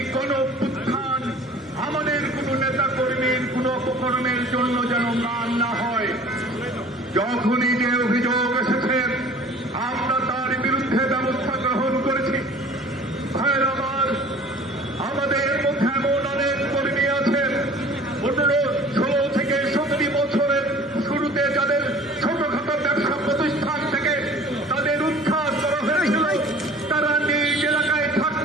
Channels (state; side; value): normal; both; correlation 0.47